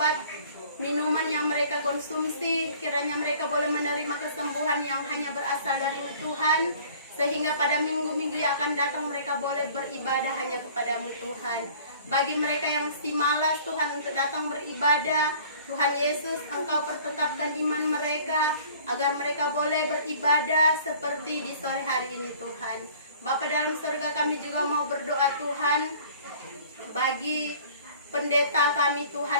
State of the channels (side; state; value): both; inverted; correlation -0.50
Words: minuman yang mereka konsumsi. Kiranya mereka boleh menerima kesembuhan yang hanya berasal dari Tuhan, sehingga pada minggu-minggu yang akan datang mereka boleh beribadah hanya kepadamu Tuhan. Bagi mereka yang si malas Tuhan untuk datang beribadah, Tuhan Yesus, Engkau pertetapkan iman mereka agar mereka boleh beribadah seperti di sore hari ini Tuhan. Bapa dalam surga, kami juga mau berdoa Tuhan bagi pendeta kami